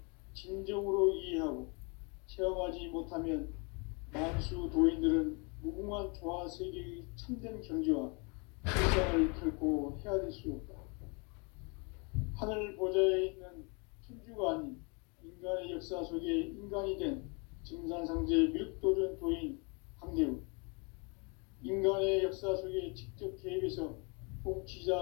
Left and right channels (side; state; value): right; quieter; 32.8 dB